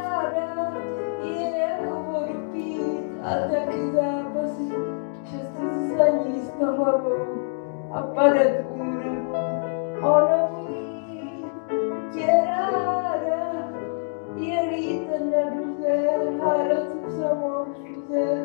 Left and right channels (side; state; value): right; silent; digital silence